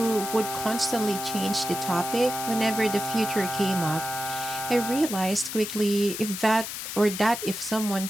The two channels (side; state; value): left; noise; hiss, 7 dB below the sound